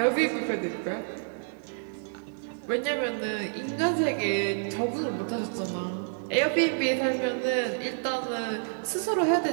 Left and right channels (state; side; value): silent; left; digital silence